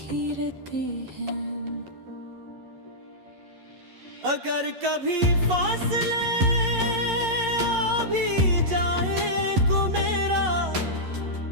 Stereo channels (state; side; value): late; left; 11 ms